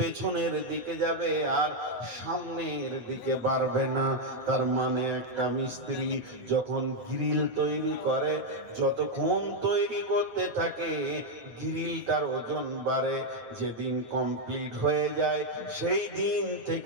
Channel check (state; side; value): late; left; 9.1 ms